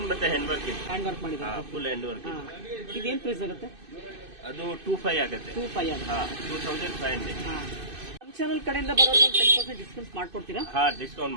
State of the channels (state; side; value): late; left; 2.6 ms